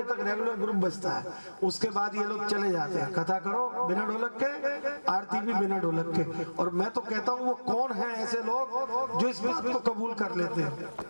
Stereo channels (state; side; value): inverted; both; correlation -1.00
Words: तक रेगुलर ग्रुप बजता है। उसके बाद ये लोग चले जाते हैं। कथा करो बिना ढोलक के, आरती भी बिना ढोलक के। और मैं तो कहता हूँ वो कौन है ऐसे लोग जो इस बात को कबूल कर लेते हैं,